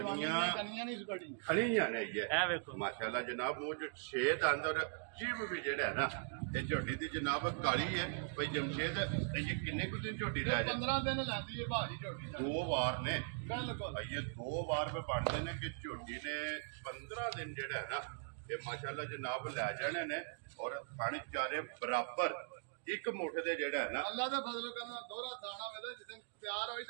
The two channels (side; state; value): left; silent; digital silence